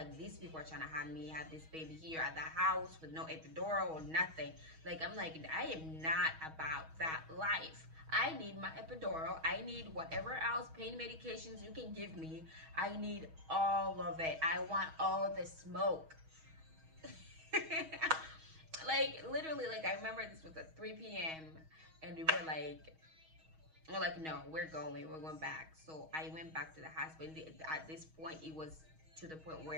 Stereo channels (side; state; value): left; late; 6.3 ms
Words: these people are trying to have me have this baby here at the house with no epidural or nothing. Like, I'm like, I am not about that life. I need my epidural. I need whatever else pain medications you can give me. I need all of it. I want all the smoke. Like, literally, like, I remember this was at 3 p.m. and we were like, no, we're going back. So I went back to the hospital. At this point, it was to the point